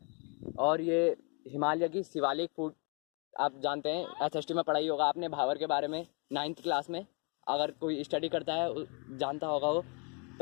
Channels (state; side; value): quieter; right; 35.3 dB